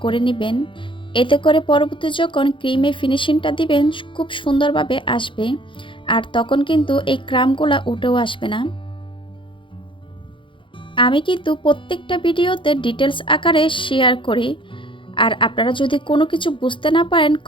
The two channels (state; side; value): late; right; 0.25 ms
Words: করে নেবেন, এতে করে পরবর্তী যখন ক্রিমে ফিনিশিংটা দিবেন খুব সুন্দরভাবে আসবে, আর তখন কিন্তু এই ক্রামগুলা উঠেও আসবে না। আমি কিন্তু প্রত্যেকটা ভিডিওতে ডিটেলস আকারে শেয়ার করি, আর আপনারা যদি কোনো কিছু বুঝতে না পারেন